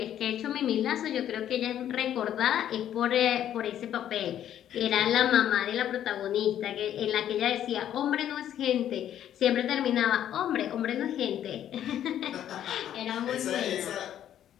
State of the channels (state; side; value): quieter; right; 10.8 dB